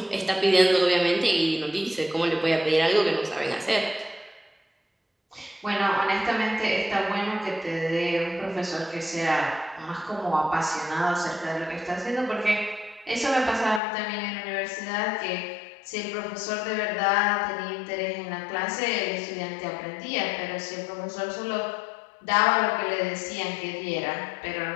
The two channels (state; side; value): drops out; right; at 13.8 s